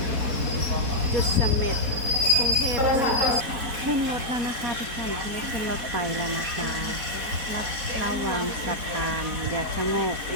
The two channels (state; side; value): late; left; 4.1 ms